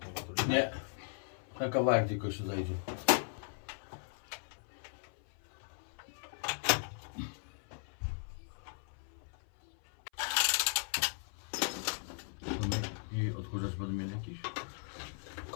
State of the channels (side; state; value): right; silent; 53 dB below the other